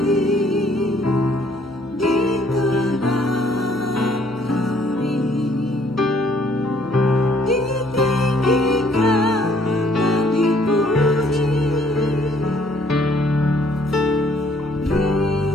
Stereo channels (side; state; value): right; noise; hum, 25 dB below the sound